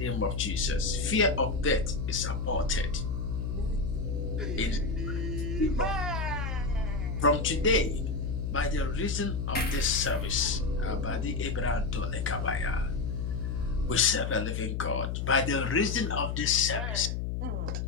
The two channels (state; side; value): noise; left; hum, 2 dB below the sound